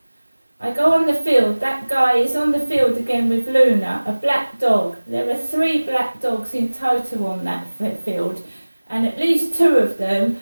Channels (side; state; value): both; inverted; correlation -1.00